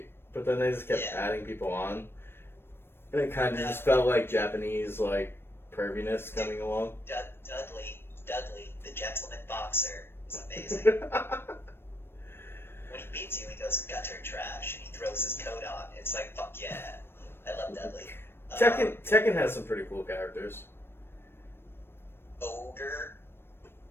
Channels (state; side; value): late; right; 0.11 ms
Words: but then they just kept adding people on. And it kind of just felt like Japanese, like, perviness coming along. Dudley, the gentleman boxer, is amazing. When he beats you, he goes gutter trash, and he throws his coat on. It's like, fuck yeah. I love Dudley. Tekken has some pretty cool characters. Ogre.